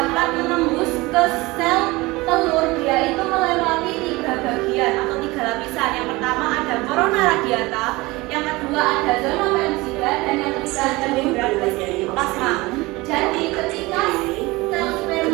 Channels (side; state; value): left; quieter; 21.9 dB